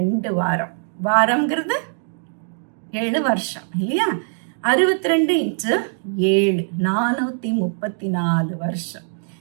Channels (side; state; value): left; silent; digital silence